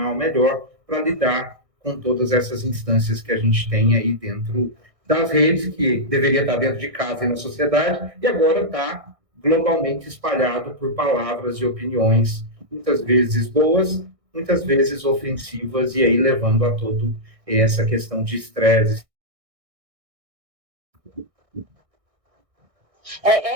melhor para lidar com todas essas instâncias que a gente tem aí dentro das redes, que deveria estar dentro de casa e na sociedade, e agora está globalmente espalhado por palavras e opiniões, muitas vezes boas, muitas vezes ofensivas, e aí levando a todo essa questão de estresse.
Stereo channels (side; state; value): left; late; 1.6 ms